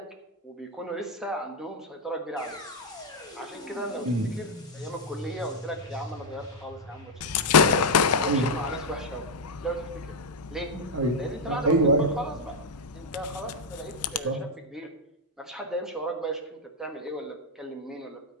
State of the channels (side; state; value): both; normal; correlation -0.01